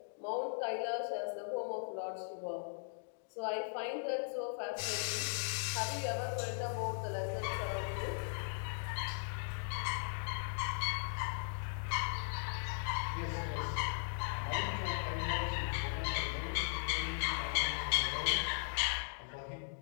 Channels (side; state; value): right; silent; digital silence